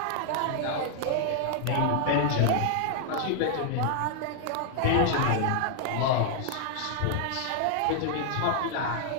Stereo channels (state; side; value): different; both; correlation 0.00